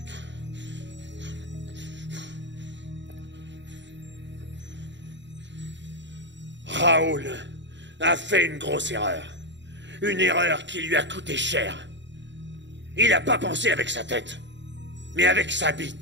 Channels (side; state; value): left; late; 0.53 ms